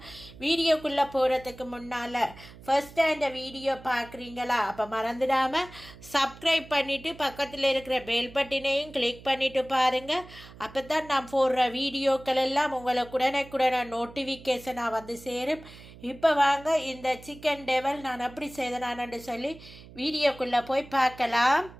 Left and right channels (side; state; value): right; noise; hum, 19 dB below the sound